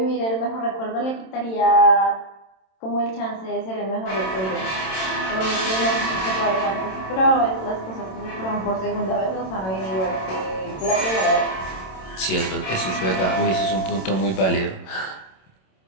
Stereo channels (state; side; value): late; right; 27 ms